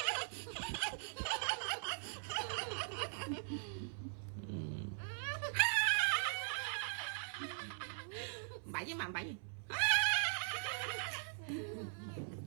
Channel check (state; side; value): silent; left; 50 dB below the other